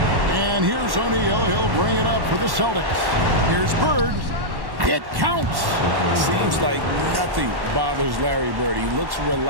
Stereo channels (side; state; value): left; late; 1.1 ms